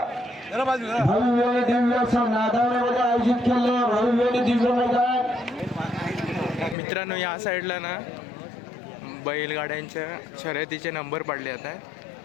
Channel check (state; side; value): drops out; right; at 6.8 s